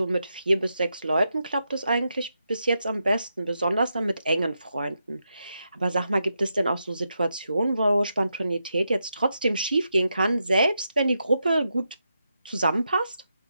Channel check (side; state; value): both; inverted; correlation -0.85